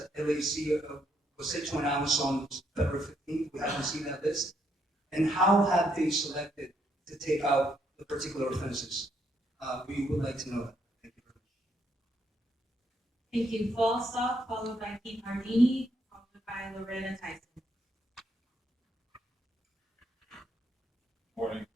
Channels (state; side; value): normal; both; correlation 0.74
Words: LAC was set to announce on February 15th? We haven't seen that list. And how have they selected to take out the particular offenses? We would like to know that. Thank you very much. Thank you. Falstaff, followed by Keith Hardini, followed by Loretta Tyson. Morning,